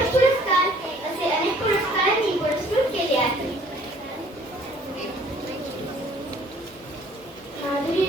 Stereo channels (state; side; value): normal; both; correlation 0.57